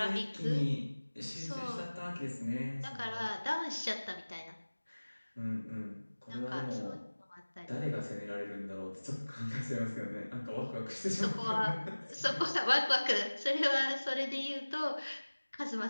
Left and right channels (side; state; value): both; inverted; correlation -1.00